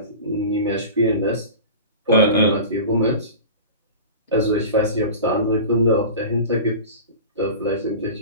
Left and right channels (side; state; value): both; inverted; correlation -0.34